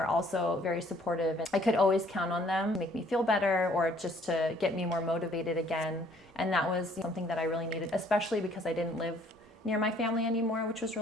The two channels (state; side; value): normal; both; correlation 0.60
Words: also very supportive, and I could always count on them to make me feel better or just to get me more motivated again. And that was something that I really needed, especially because I didn't live near my family anymore, which was